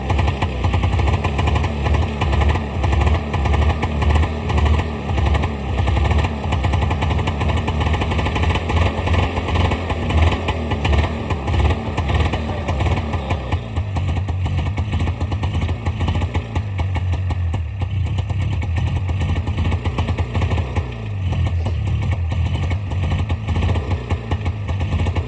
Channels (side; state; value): both; identical; correlation 1.00